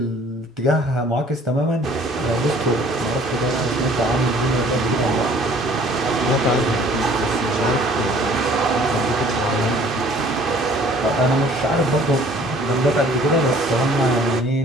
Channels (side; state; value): both; normal; correlation 0.54